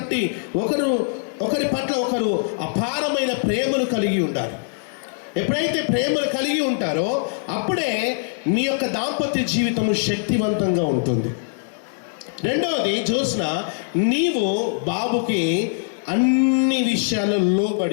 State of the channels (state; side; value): silent; right; 62 dB below the other